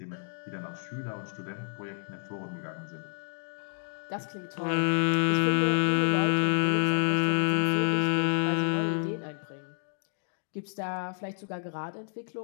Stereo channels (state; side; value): silent; right; digital silence